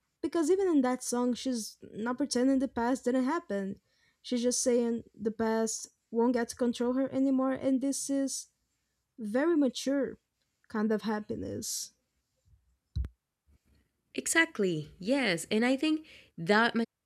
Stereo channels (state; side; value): identical; both; correlation 1.00